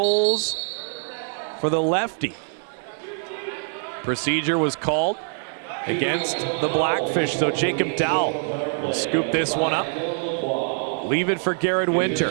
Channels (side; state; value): left; silent; 60 dB below the other